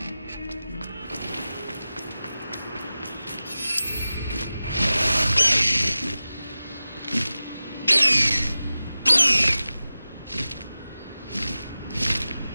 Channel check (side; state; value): both; inverted; correlation -0.95